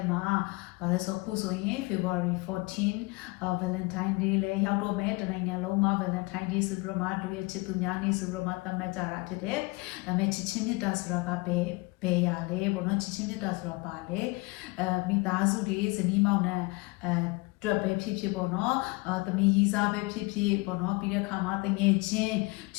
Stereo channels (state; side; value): quieter; right; 25.2 dB